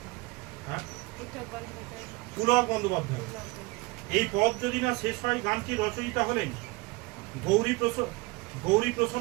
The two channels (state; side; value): quieter; left; 23.5 dB